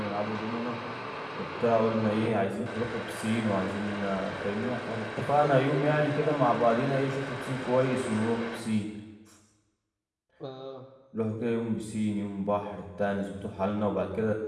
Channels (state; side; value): identical; both; correlation 1.00